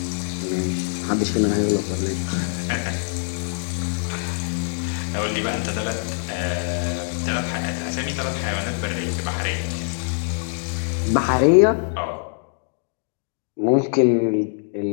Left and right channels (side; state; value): right; silent; digital silence